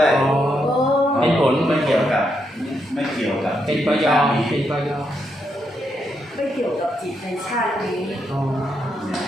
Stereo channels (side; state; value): both; normal; correlation 0.80